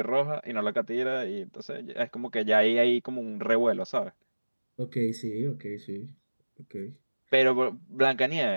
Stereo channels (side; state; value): both; inverted; correlation -1.00